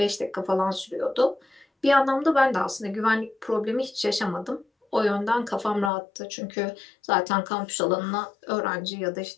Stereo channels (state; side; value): drops out; right; at 5.9 s